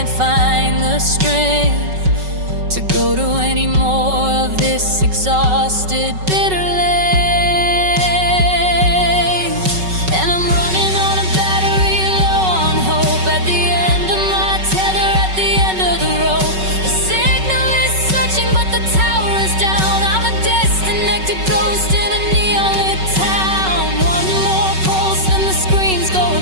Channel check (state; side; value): late; left; 5.3 ms